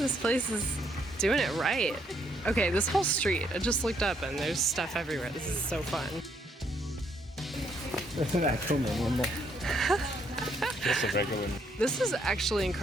place is doing it right. Okay, this whole street, I just looked up and there's stuff everywhere. This is so fun. It's an actual minion. Just a regular. This is actually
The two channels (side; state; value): both; normal; correlation 0.71